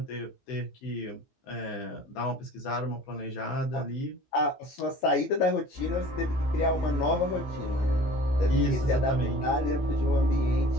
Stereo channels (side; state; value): right; late; 14 ms